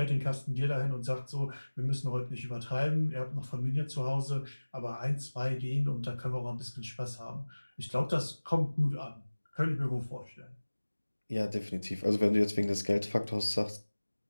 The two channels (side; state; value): both; inverted; correlation -1.00